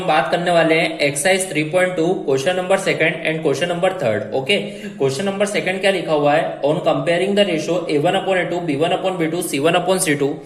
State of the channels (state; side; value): identical; both; correlation 1.00